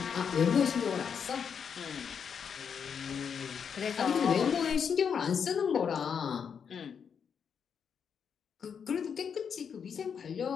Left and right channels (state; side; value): quieter; right; 7.0 dB